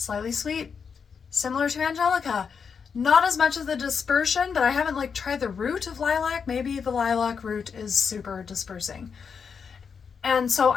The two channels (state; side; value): quieter; right; 6.2 dB